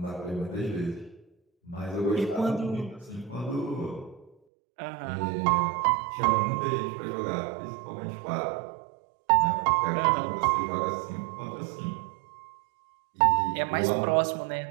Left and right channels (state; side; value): drops out; left; at 4.3 s